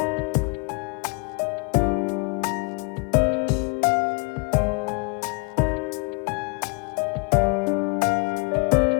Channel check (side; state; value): right; quieter; 31.0 dB